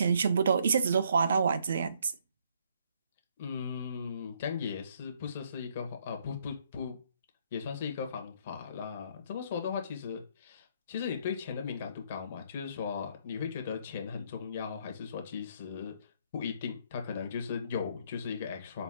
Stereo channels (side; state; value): both; inverted; correlation -0.68